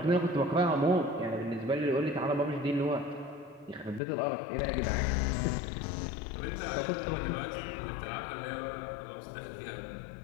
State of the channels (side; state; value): right; drops out; at 4.0 s